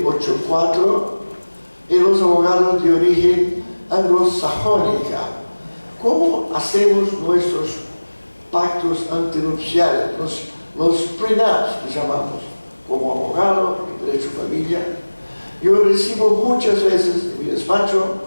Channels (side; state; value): both; inverted; correlation -1.00